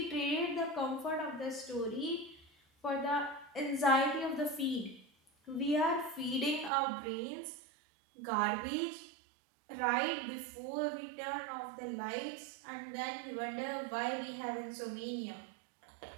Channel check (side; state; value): left; drops out; at 6.7 s